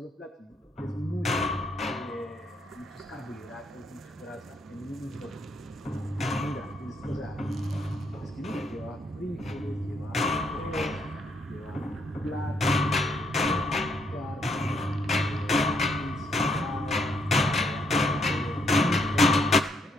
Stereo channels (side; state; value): both; normal; correlation 0.73